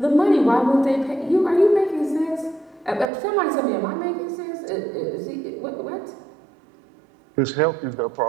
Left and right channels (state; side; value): drops out; left; at 3.1 s